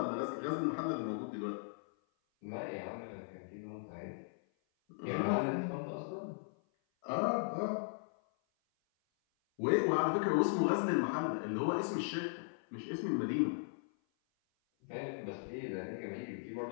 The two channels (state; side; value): silent; right; 53 dB below the other